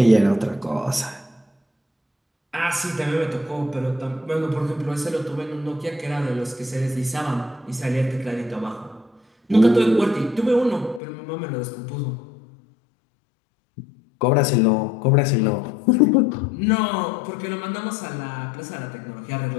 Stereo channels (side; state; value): right; drops out; at 11.0 s